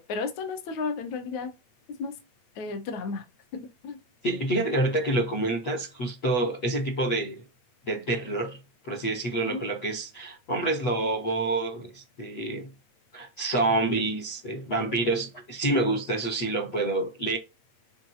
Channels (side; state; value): right; late; 8.3 ms